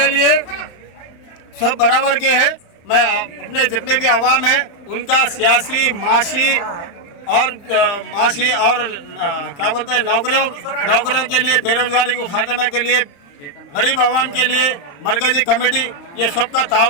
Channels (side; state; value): right; late; 35 ms